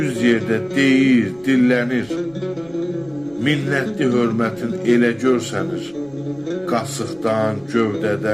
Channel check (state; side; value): noise; right; rumble, 27 dB below the sound